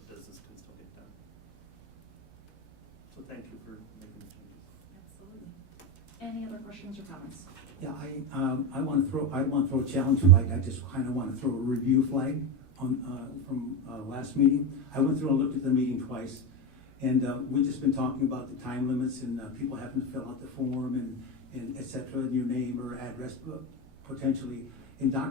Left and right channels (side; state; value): right; noise; hum, 27 dB below the sound